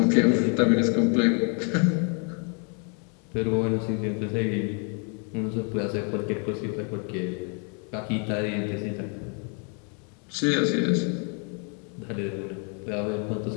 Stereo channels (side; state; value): right; quieter; 38.6 dB